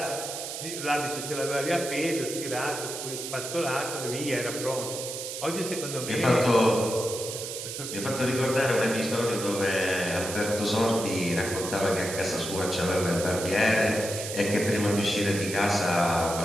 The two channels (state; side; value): noise; right; hiss, 7 dB below the sound